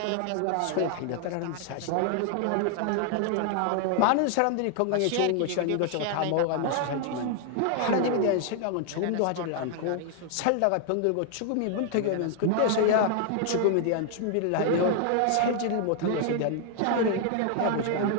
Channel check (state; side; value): different; both; correlation 0.00